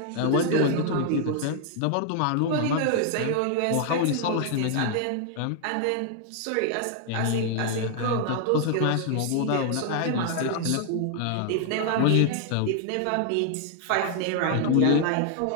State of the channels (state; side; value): different; both; correlation 0.00